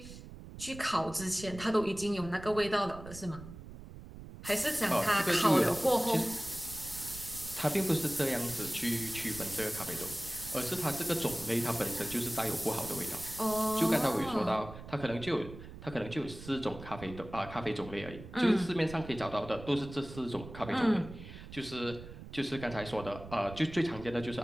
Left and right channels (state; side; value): noise; right; rumble, 14 dB below the sound